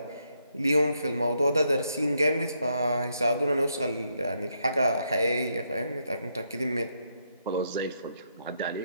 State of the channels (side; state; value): both; inverted; correlation -0.77